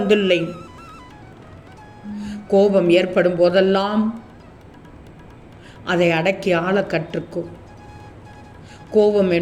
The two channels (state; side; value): identical; both; correlation 1.00